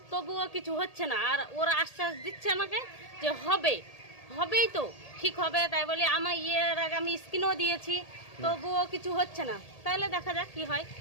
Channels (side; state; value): right; late; 1.8 ms